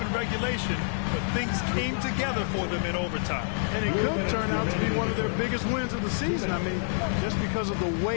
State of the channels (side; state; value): right; silent; digital silence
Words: in regulation, but things came together for them in overtime. And it could turn out to be one of their biggest wins of the season. I mean, just because of the